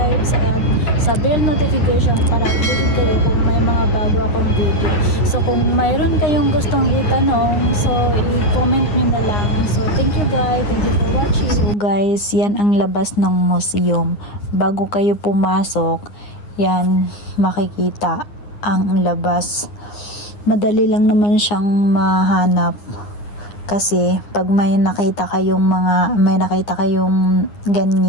at sa bell notification para updated kayo kung may mga bago akong video. So, kung mayroon kayong gustong itanong, so i-comment nyo na lang. So, thank you guys. Thank you for watching. So guys, yan ang labas ng museum. Bago kayo pumasok, yan makikita ang labas. Madali lang naman siyang mahanap kasi pag may nakita kayong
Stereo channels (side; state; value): right; late; 9.7 ms